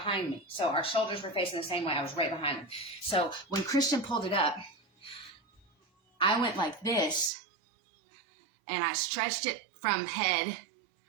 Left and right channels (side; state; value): left; drops out; at 7.3 s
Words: me. So our shoulders were facing the same way. I was right behind him. So when Christian pulled it up, I went like this, and I stretched it from head